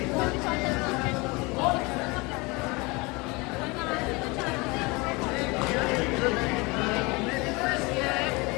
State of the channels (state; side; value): quieter; right; 25.9 dB